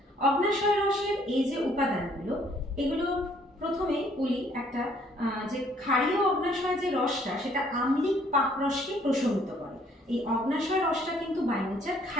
অগ্ন্যাশয় রসের এই যে উপাদানগুলো, এগুলো প্রথমে বলি একটা যে ক্ষারীয় অগ্ন্যাশয় যে রসটা সেটা আম্লিক পাকরসকে প্রশমিত করে। এই অগ্ন্যাশয় রসটা কিন্তু বাই নেচার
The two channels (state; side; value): normal; both; correlation 0.63